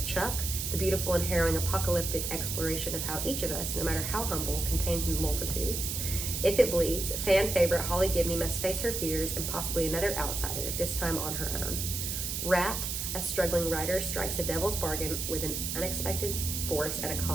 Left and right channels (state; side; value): noise; right; hiss, 3 dB below the sound